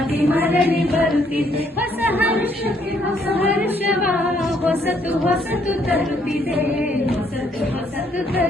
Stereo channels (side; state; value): both; normal; correlation 0.68